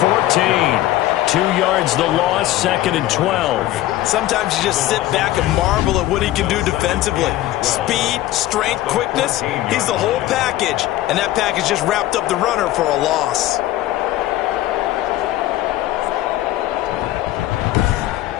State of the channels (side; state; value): right; quieter; 15.0 dB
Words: 2 yards the loss, second and 12. Sometimes you just sit back and marvel at what he can do defensively. Speed, strength, quickness, he's the whole package. And that package just wrapped up the runner for a loss.